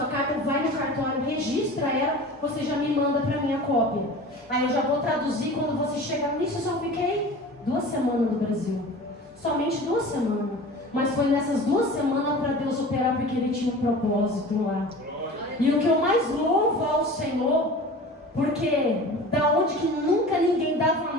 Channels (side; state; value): both; normal; correlation 0.38